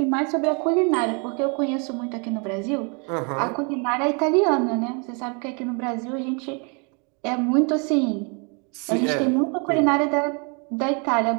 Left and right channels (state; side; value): quieter; left; 35.3 dB